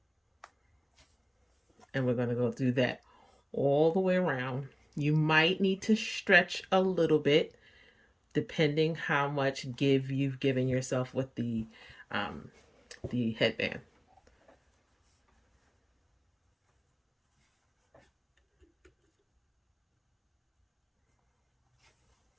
And we're going to go through that all the way around. You might need to stretch a little bit depending how much give you've given yourself with the headband.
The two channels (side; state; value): both; identical; correlation 1.00